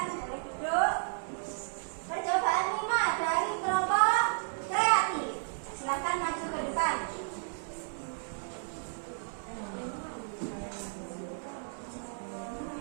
boleh duduk. Percobaan 5 dari kelompok kreatif. Silakan maju ke depan.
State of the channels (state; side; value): silent; left; 56 dB below the other